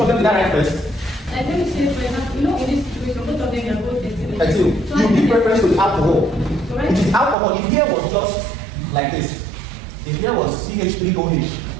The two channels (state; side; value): drops out; left; at 7.4 s